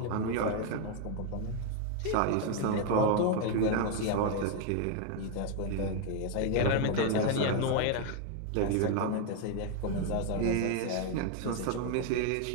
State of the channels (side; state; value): both; different; correlation 0.01